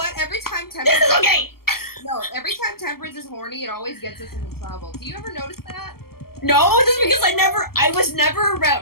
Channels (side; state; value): right; late; 0.94 ms